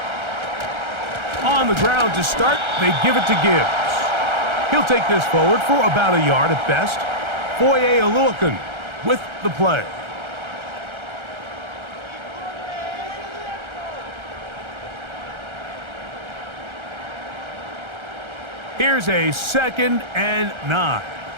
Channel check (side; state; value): left; late; 1.3 ms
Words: On the ground to start, they give it to Gibbs. He'll take this forward for about a yard at best. Foye Oluokun with the play. Here's a 2nd and 9.